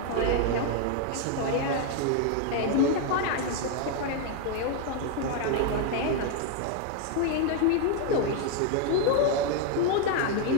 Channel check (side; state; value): both; different; correlation 0.01